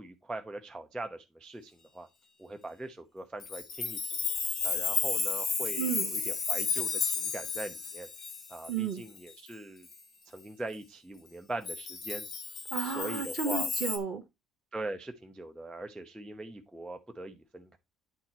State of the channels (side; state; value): both; normal; correlation 0.59